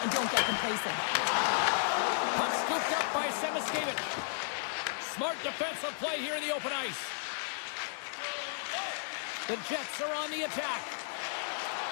and don't get complacent. Puck scooped up by Semiskevich. Smart defensive play here in the open ice. The Jets are on the attack.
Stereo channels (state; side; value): silent; right; 55 dB below the other